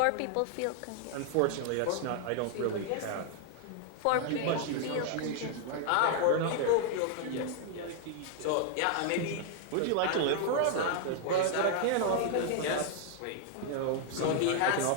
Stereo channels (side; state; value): both; different; correlation 0.00